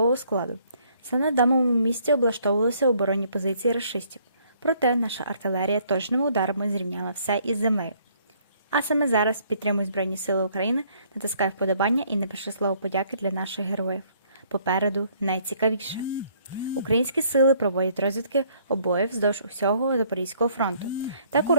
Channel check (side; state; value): both; inverted; correlation -0.64